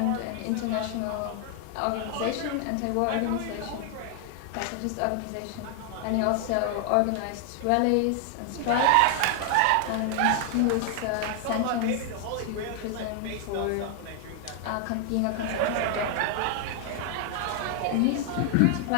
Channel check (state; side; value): different; both; correlation 0.00